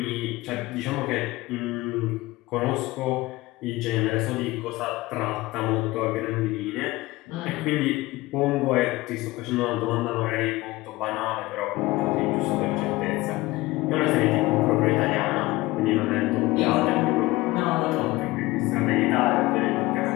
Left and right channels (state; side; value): quieter; right; 19.8 dB